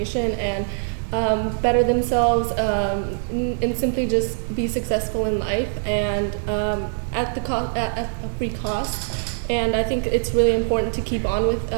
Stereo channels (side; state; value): left; silent; 64 dB below the other